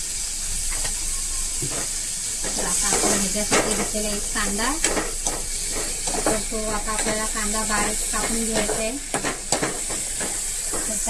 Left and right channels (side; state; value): both; identical; correlation 1.00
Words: तर आता आपण ह्याच्यासाठी घेतलेला एक कांदा, तर तो आता आपल्याला कांदा बारीक कापून घ्यायचा आहे। तर